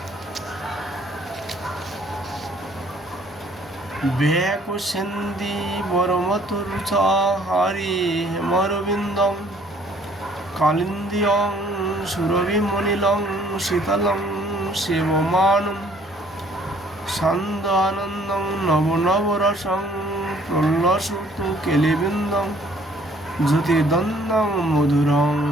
বেকুশেন্দি বরমতরুচা হারি হেমরবিন্দং কালিন্দিয়ং সুরভিমনিলং শীতলং শিবমানম সান্দানন্দং নবনবরসং প্রলসুত কেলিবিন্দং জ্যোতিদন্দং মধুরং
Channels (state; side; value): normal; both; correlation 0.59